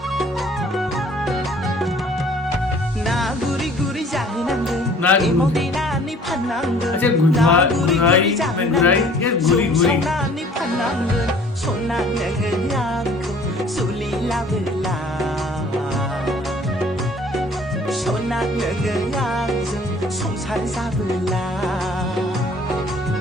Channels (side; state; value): both; normal; correlation 0.54